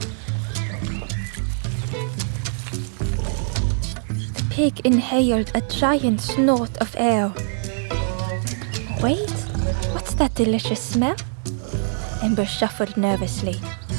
The pig inhaled a giant snort of air. Wait, what's that delicious smell? Ember shuffled nervously.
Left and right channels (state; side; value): silent; left; 63 dB below the other